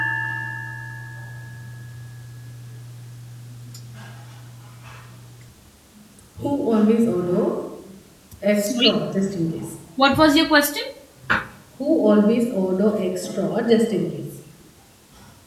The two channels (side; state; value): both; identical; correlation 1.00